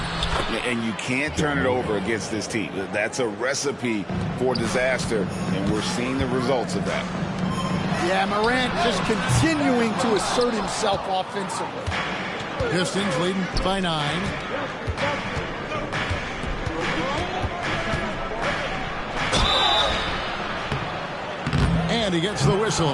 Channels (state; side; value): identical; both; correlation 1.00